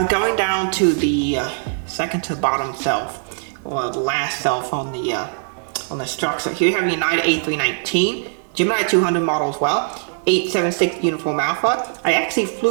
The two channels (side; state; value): left; silent; digital silence